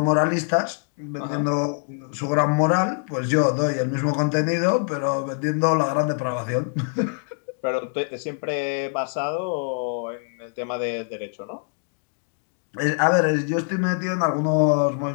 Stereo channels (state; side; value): silent; right; 62 dB below the other